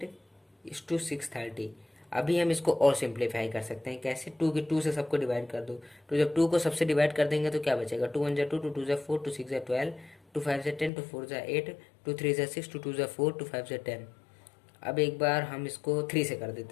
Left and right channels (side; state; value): right; drops out; at 10.9 s